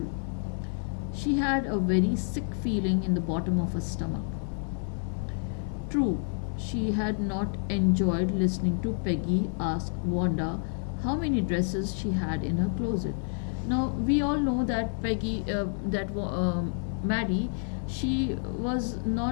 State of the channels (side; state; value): right; silent; 59 dB below the other